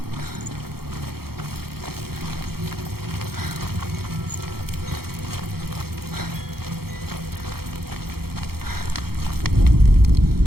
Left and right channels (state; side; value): late; left; 0.95 ms